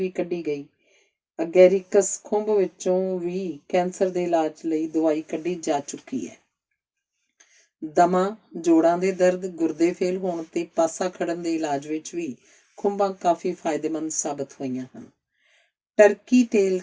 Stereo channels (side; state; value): both; identical; correlation 1.00